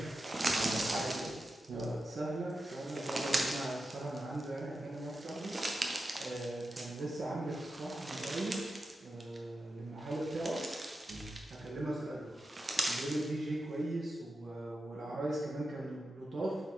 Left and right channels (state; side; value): normal; both; correlation 0.90